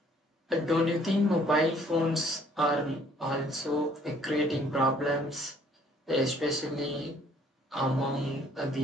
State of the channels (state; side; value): normal; both; correlation 0.61